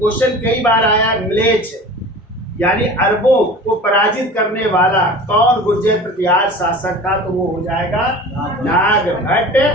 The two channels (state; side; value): normal; both; correlation 0.38